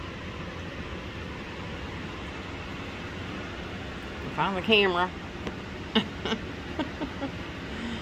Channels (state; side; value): identical; both; correlation 1.00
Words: Find the camera.